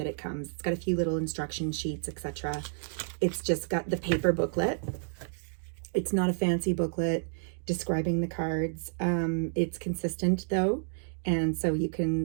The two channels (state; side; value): silent; left; digital silence